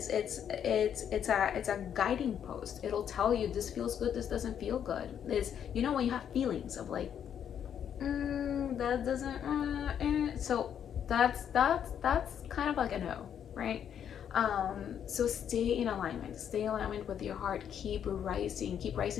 a guiding post. It'll tell you this feels good, this doesn't feel good. It's, you know, when you have feelings of like, that doesn't so that's kind of like a no, right? So stay in alignment with your heart. Keep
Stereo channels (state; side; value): quieter; right; 8.9 dB